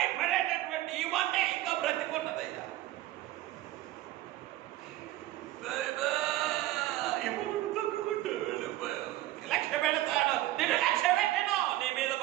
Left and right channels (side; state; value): left; quieter; 15.6 dB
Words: ఇవన్నీ ఇంకా బ్రతికున్నదయ్యా. తొక్కుకుంటూ వెళ్ళిపోయాను, లక్ష్య పెడతాను, నేను లక్ష్య పెట్టాను. నీ మీద